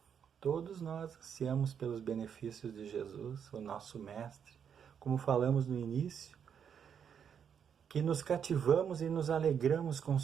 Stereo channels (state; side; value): quieter; left; 7.7 dB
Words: Todos nós ansiamos pelos benefícios de Jesus, o nosso Mestre, como falamos no início, que nos cativamos e nos alegramos com